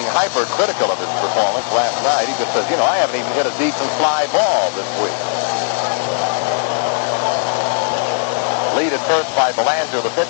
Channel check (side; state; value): right; silent; 68 dB below the other